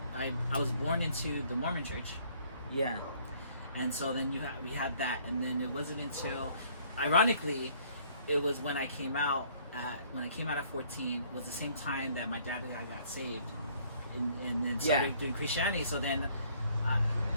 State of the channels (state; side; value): inverted; both; correlation -0.60